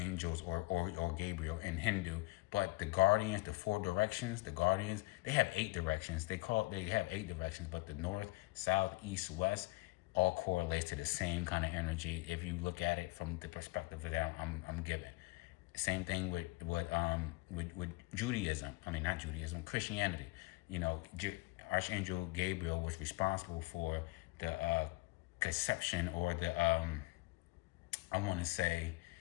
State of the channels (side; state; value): right; quieter; 22.9 dB